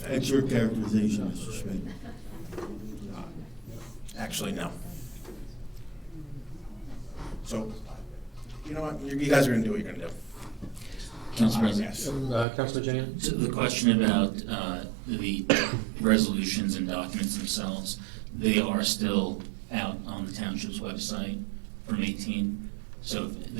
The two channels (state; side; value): drops out; left; at 12.5 s